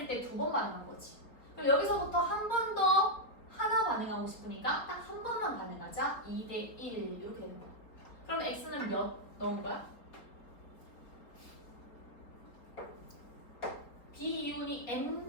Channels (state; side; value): late; right; 4.3 ms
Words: 때 2번 반응한 거지. 그럼 여기서부터 한 번 더 하나 반응하고 싶으니까 딱 한 번만 반응하자. 2대 1 이렇게 되는 거야. 그럼 X는 몇 넣은 거야? B 이온이